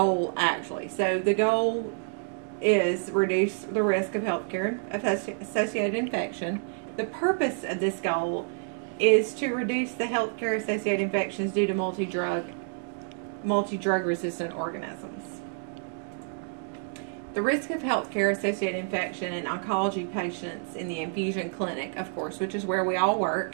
actually? So, the goal is reduce the risk of healthcare-associated infection. The purpose of this goal is to reduce the healthcare-associated infections due to multi-drug resistant organisms. The risk of healthcare-associated infection in oncology patients in the infusion clinic, of course, which is where we all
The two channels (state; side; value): silent; left; digital silence